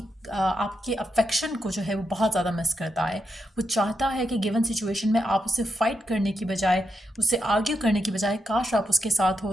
अफेक्शन को जो है वो बहुत ज़्यादा मिस करता है। वो चाहता है कि गिवन सिचुएशन में आप उससे फाइट करने की बजाय, उससे आर्ग्यू करने की बजाय, काश आप उसके साथ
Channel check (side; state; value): both; normal; correlation 0.83